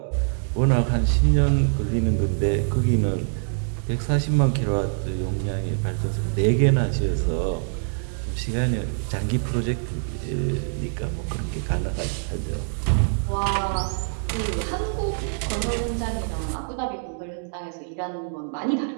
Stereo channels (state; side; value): silent; left; digital silence